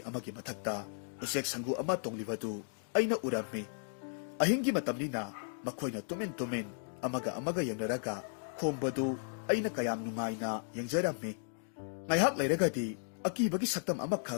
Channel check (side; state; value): right; silent; digital silence